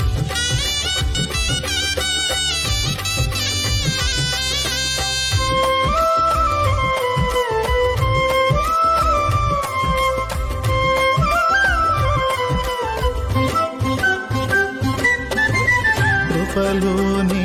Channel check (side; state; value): both; identical; correlation 1.00